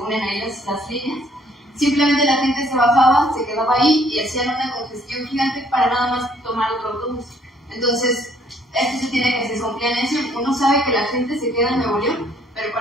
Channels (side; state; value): both; normal; correlation 0.63